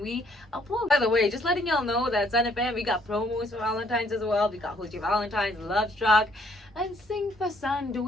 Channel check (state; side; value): normal; both; correlation 0.66